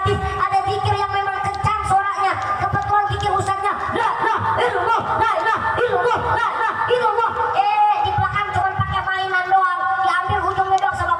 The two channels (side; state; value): both; identical; correlation 1.00